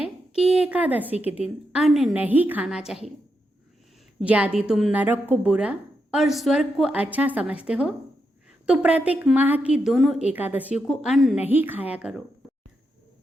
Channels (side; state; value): both; normal; correlation 0.84